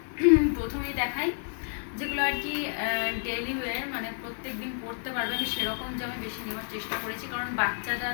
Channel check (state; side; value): silent; right; 58 dB below the other